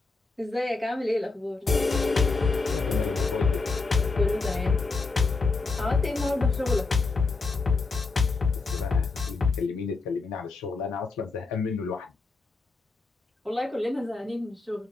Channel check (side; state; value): right; quieter; 3.9 dB